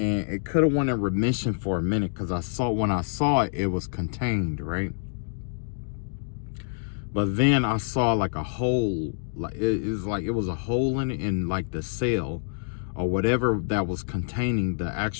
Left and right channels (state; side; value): silent; right; digital silence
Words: it could have went in remission for a minute, because when I saw it, it was contained, right? But then I saw a hole, it was a hole in the cell or whatever that was containing the